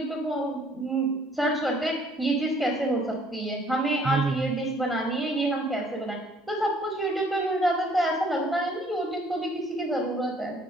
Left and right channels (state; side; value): normal; both; correlation 0.59